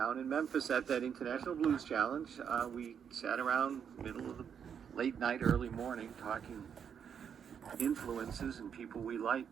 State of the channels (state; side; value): quieter; left; 7.7 dB